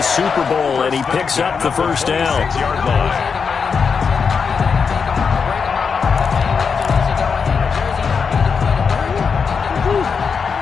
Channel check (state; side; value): quieter; right; 5.8 dB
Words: Super Bowl, and he picks up the first down. 6-yard line.